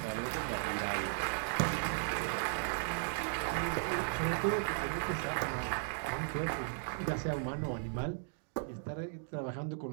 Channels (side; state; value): left; silent; digital silence